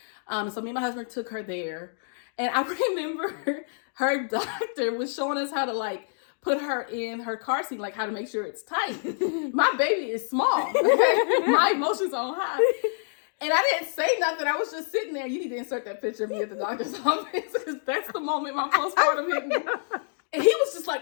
So me and my husband took her there. And I remember her doctor was showing us how to like put her in her car seat, like how to make sure it's tight. My baby is small. My emotions on high. And I didn't say nothing. I was just sitting there. You need to insert that picture of me at the doctor's office because that's the moment my postpartum hit me. And he was just like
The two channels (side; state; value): right; silent; digital silence